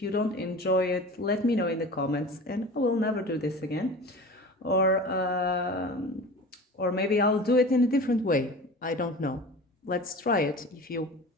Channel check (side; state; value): both; normal; correlation 0.36